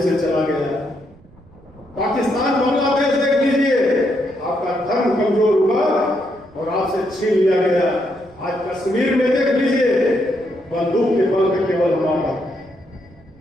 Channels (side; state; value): right; noise; rumble, 26 dB below the sound